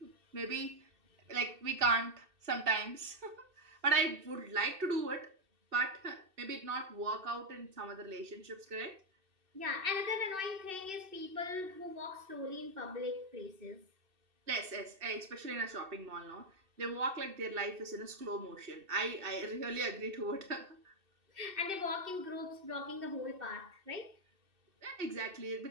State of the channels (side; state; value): left; late; 2.6 ms